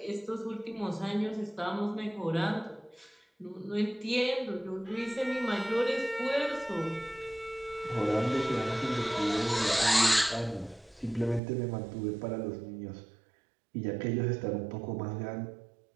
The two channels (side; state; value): left; drops out; at 11.4 s